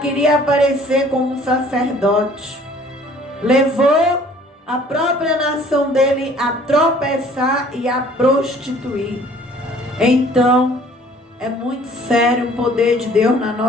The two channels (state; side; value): normal; both; correlation 0.54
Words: aparecer como um sacerdote. Levou a própria nação dele a tropeçar e a prostituir. Então, é muito sério o poder de Deus na